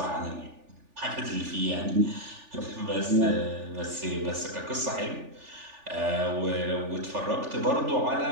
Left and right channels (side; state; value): left; late; 3.4 ms